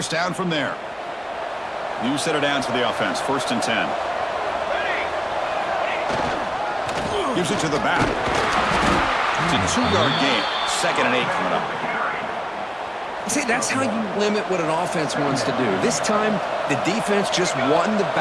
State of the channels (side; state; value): both; identical; correlation 1.00